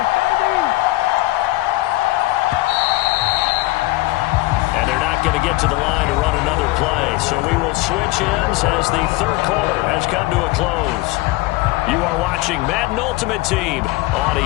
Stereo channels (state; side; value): quieter; right; 19.7 dB